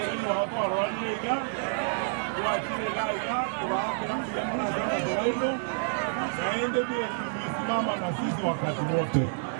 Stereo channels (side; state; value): left; silent; digital silence